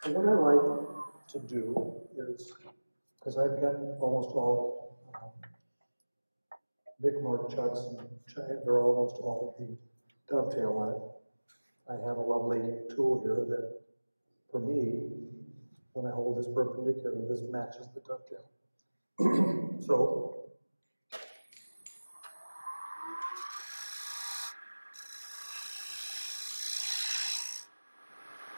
So what I like to do is, because I've got almost all big mark chucks, and they're almost all the dovetail on it. I have a lovely tool here that, for me, when I hold this perpendicular, this matches the dovetail. So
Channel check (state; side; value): inverted; both; correlation -1.00